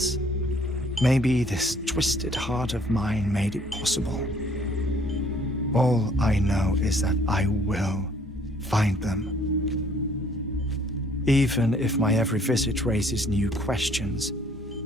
Maybe this twisted heart of mine made it possible. All I know is that I will find them. Even if my every visit raises new questions,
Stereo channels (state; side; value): normal; both; correlation 0.61